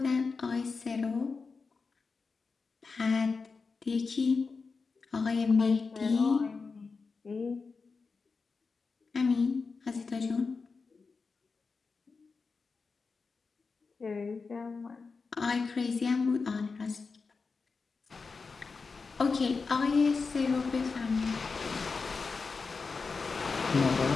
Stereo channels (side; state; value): right; quieter; 4.6 dB